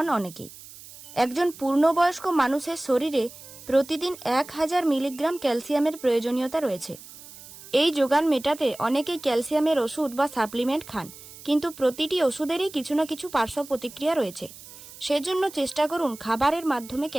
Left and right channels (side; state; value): right; noise; hiss, 18 dB below the sound